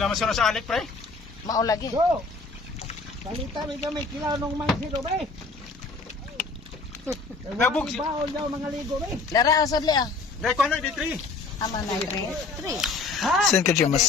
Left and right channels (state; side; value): quieter; right; 4.1 dB